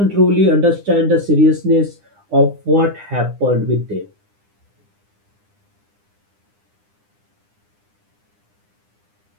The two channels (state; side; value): late; left; 9.9 ms